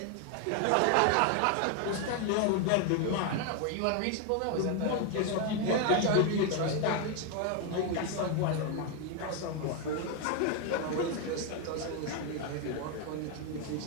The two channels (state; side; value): different; both; correlation 0.01